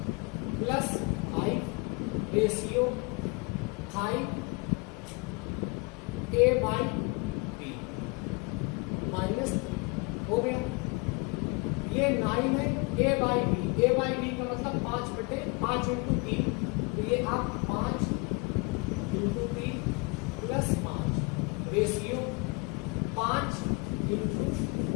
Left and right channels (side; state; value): right; quieter; 30.4 dB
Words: plus 5 ratio 5a by b minus 3 हो गया। ये 9 है a बाई बी का मतलब 5 बटे 5 इंटू 3, तो ये आप 5 इंटू 3 प्लस 5 रेशियो 5 इंटू